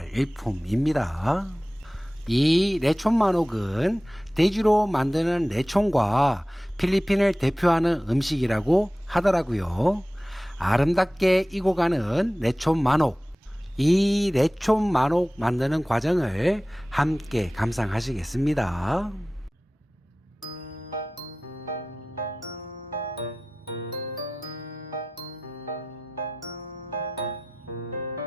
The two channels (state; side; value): normal; both; correlation 0.95